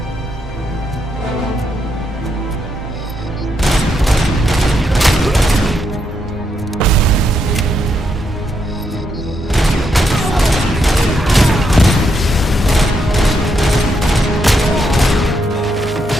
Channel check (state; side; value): normal; both; correlation 0.79